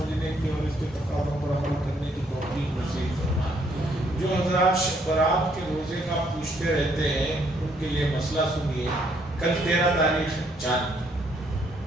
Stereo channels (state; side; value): normal; both; correlation 0.69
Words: کی اور اس کے تقاضوں پر عمل کرنے کی توفیق نصیب فرمائے۔ جو حضرات شب برات کے روزے کا پوچھتے رہتے ہیں ان کے لیے مسئلہ سنیے۔ کل 13 تاریخ چاند،